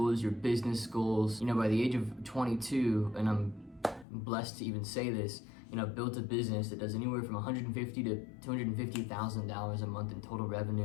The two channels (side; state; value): right; drops out; at 4.0 s